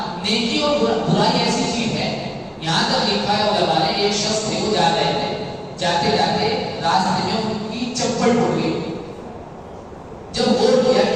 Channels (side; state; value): both; identical; correlation 1.00